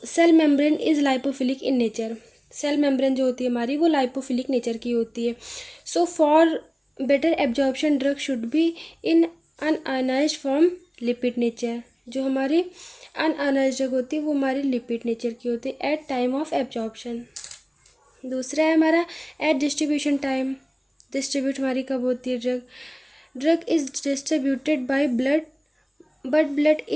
cell membrane is lipophilic in nature. Cell membrane जो होती है हमारी वो लाइपोफिलिक नेचर की होती है। So for better absorption drug should be in unionised form, lipid nature. जो हमारी अनआयोनाइज्ड ड्रग होती है वो हमारी लिपिड नेचर की होती है एट टाइम ऑफ एब्जॉर्प्शन। दूसरा है हमारा एट डिस्ट्रीब्यूशन टाइम। डिस्ट्रीब्यूट हमारी कब होती है drug is distributed by blood but blood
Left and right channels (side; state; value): both; identical; correlation 1.00